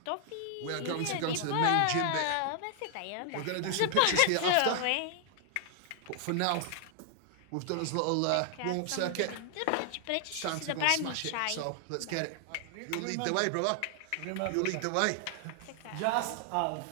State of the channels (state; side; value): different; both; correlation 0.00